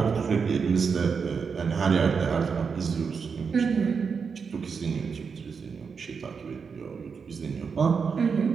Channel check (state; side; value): quieter; left; 5.8 dB